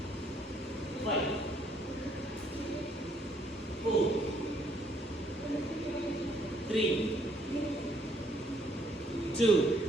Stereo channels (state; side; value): normal; both; correlation 0.68